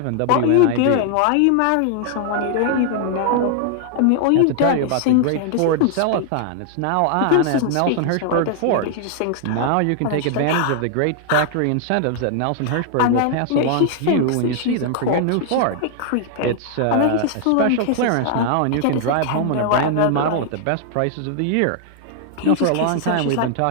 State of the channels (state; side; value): different; both; correlation 0.00